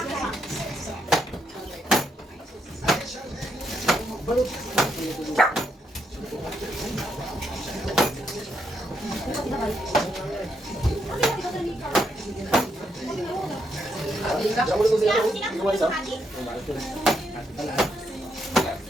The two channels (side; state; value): both; normal; correlation 0.78